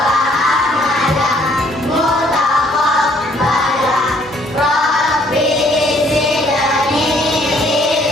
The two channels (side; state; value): both; normal; correlation 0.63